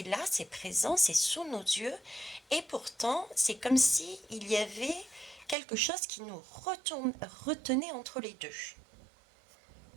là, c'est présent, c'est sous nos yeux. Et pourtant, c'est comme si il y avait quelque chose qui nous retenait entre les deux.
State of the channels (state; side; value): drops out; left; at 5.6 s